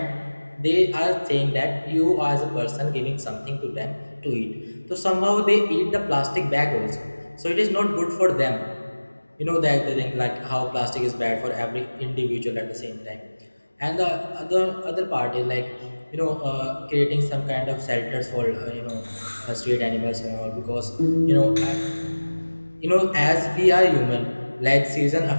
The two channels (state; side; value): inverted; both; correlation -1.00